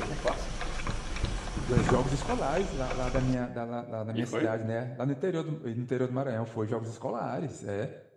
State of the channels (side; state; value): both; identical; correlation 1.00